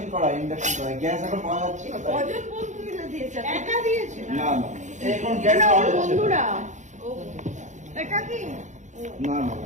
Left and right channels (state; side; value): late; left; 0.35 ms